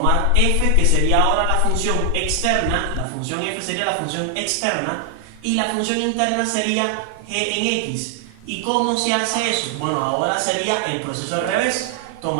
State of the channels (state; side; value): different; both; correlation 0.00